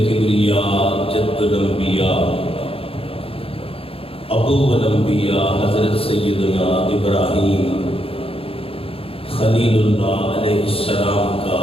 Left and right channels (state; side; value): late; right; 0.27 ms